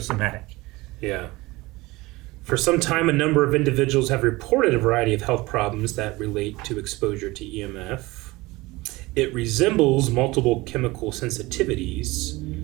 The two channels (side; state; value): left; quieter; 21.1 dB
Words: Yeah. For some time, a number of individuals have reported a variety of health problems that relate to exposure to EMF. It resembles multiple chemical sensitivities.